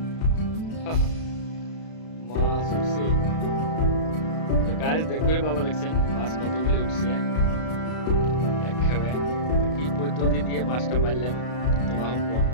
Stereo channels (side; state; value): right; late; 32 ms